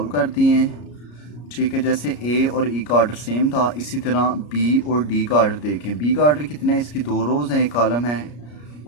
कर दिए हैं, ठीक है। जैसे ए और ई का ऑर्डर सेम था, इसी तरह बी और डी का ऑर्डर देखें। बी का ऑर्डर कितना है, इसकी 2 रोज़ हैं, एक कॉलम है,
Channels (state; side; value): late; right; 33 ms